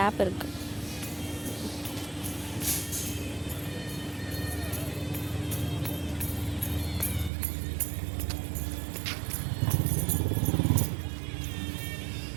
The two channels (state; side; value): drops out; left; at 7.3 s